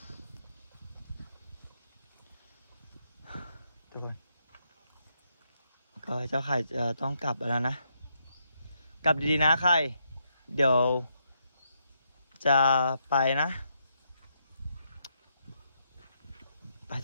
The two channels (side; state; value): both; inverted; correlation -0.78